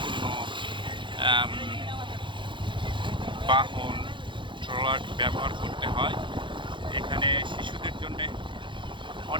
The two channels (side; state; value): left; late; 0.23 ms